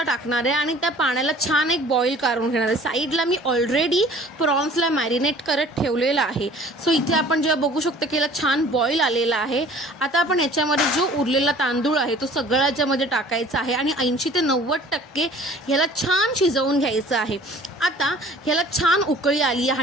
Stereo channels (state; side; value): normal; both; correlation 0.50